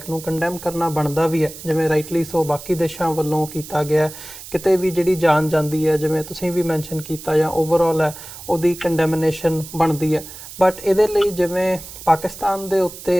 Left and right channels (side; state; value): right; noise; hiss, 14 dB below the sound